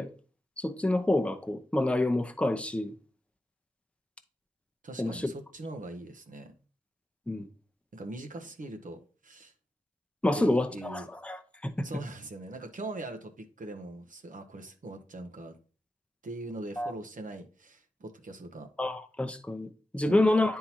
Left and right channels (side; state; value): both; normal; correlation 0.91